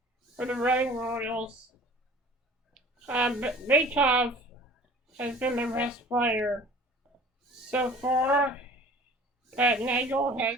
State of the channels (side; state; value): both; normal; correlation 0.46